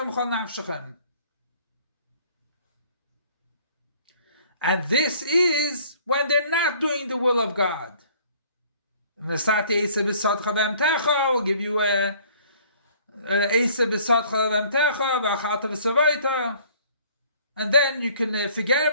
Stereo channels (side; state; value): both; inverted; correlation -0.55